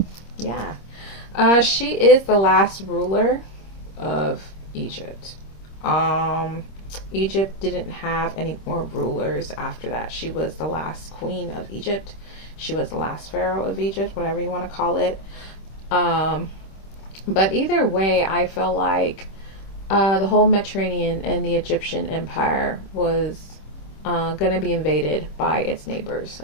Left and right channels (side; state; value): right; late; 26 ms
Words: She is the last ruler of Egypt. Egypt didn't have any more rulers after that. She was the last queen of Egypt. She was the last pharaoh of Egypt, whatever you want to call it. But either way, I feel like the whole Mediterranean and the Egyptian empire was going to be invaded by its neighbors.